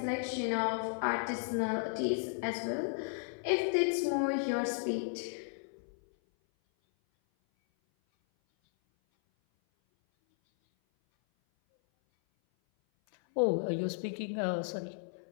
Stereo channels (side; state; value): right; silent; 55 dB below the other